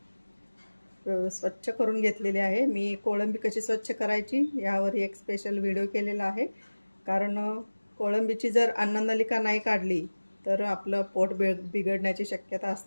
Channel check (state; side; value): inverted; both; correlation -1.00